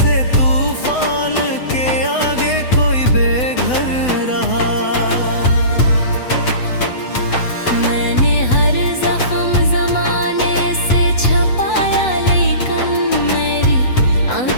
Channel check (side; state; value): right; late; 8.0 ms